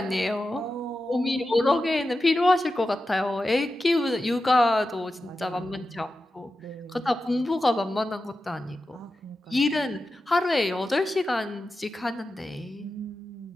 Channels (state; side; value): normal; both; correlation 0.92